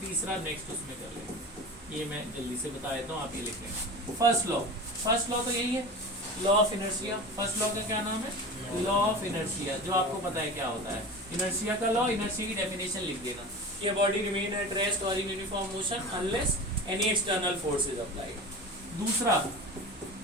तीसरा नेक्स्ट उसमें कर लेते हैं। ये मैं जल्दी से बता देता हूँ, आप ये लिख लें। फर्स्ट लॉ, फर्स्ट लॉ तो यही है, law of inertia. First law का क्या नाम है? लॉ ऑफ इनर्शिया, जो आपको पता है क्या होता है। इनर्शिया का लॉ, इनर्शिया की डेफिनेशन लिख देना कि बॉडी रिमेन एट रेस्ट और in uniform motion unless any external force is applied. दूसरा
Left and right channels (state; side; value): normal; both; correlation 0.31